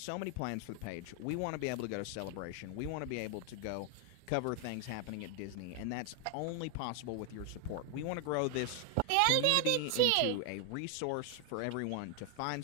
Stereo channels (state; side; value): different; both; correlation 0.00